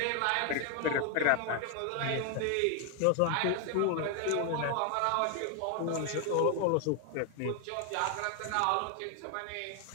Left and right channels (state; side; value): different; both; correlation 0.00